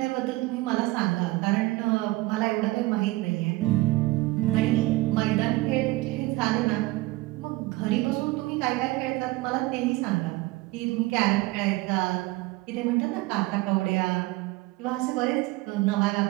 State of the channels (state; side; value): quieter; left; 20.2 dB